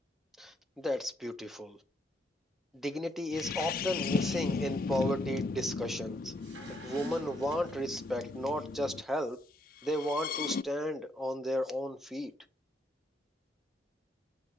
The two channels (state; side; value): normal; both; correlation 0.73